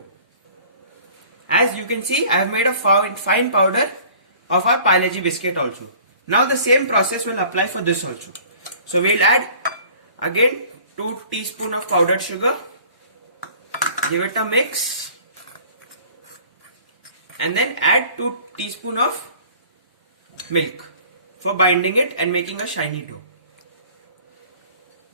As you can see, I have made a fine powder of our Parle-G biscuit also. Now the same process will apply for this also. So we'll add again 2 teaspoons of powdered sugar. Give it a mix. And then add 2 teaspoons of milk for binding it and making a shiny dough.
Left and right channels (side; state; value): both; inverted; correlation -0.49